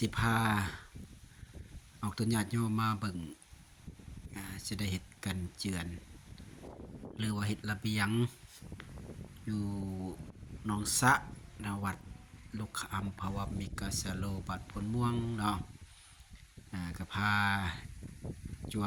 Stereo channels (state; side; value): identical; both; correlation 1.00